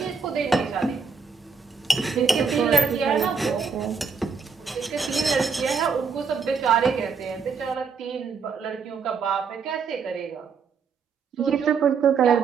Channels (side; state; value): left; quieter; 5.5 dB